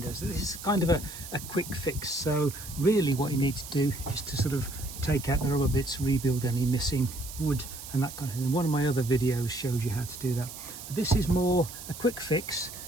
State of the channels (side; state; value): right; noise; hiss, 12 dB below the sound